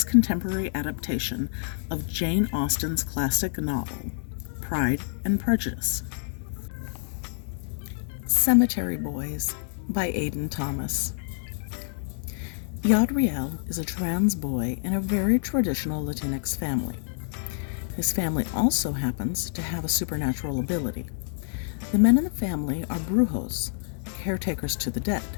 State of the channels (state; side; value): silent; right; digital silence